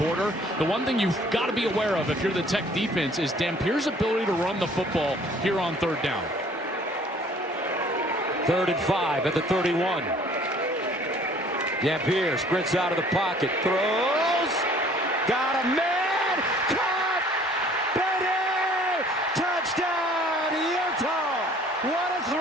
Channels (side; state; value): both; normal; correlation 0.55